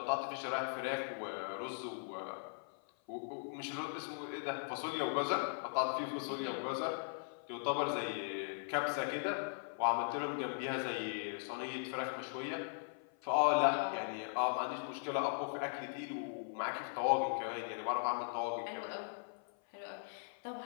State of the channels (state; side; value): silent; right; 52 dB below the other